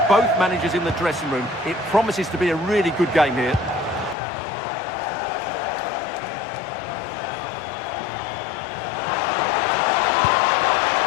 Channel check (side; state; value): right; drops out; at 4.2 s